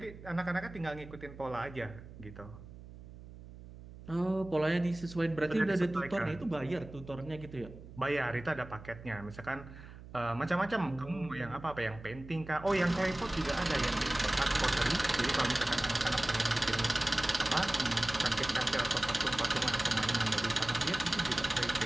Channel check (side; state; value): right; noise; hum, 16 dB below the sound